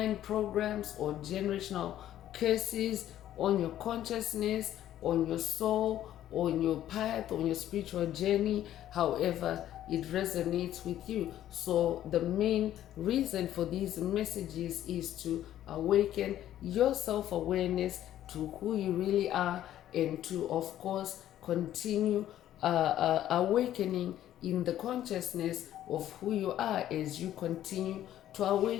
programs or generational curses on your consciousness, on your soul, on your path, on your spiritual journey, however it resonates with you. So the main reason for these messages is to awaken your self-awareness to who you really are, and to, of course, continue awakening in the consciousness of who you are as you continue to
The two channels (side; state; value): right; quieter; 12.2 dB